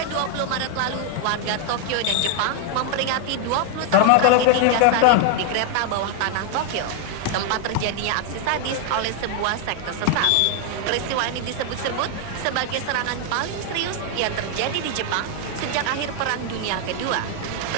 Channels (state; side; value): different; both; correlation 0.00